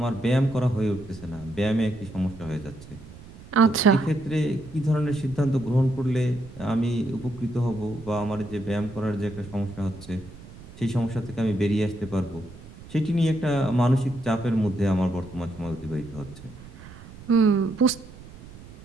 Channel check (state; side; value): noise; right; rumble, 18 dB below the sound